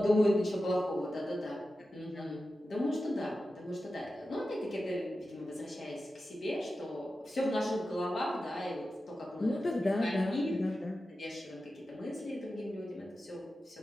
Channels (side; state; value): both; normal; correlation 0.92